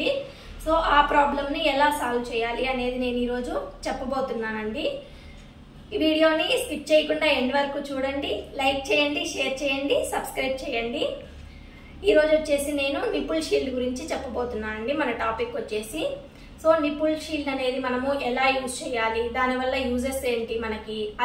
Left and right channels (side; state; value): both; identical; correlation 1.00